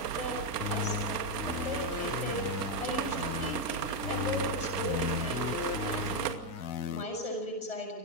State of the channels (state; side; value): late; right; 1.3 ms